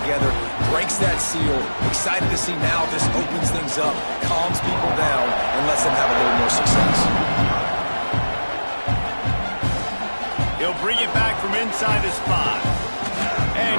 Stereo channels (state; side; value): inverted; both; correlation -1.00